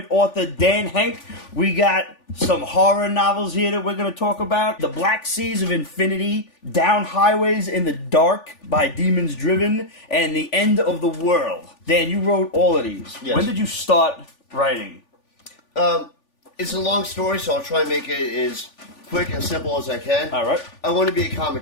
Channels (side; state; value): right; late; 3.4 ms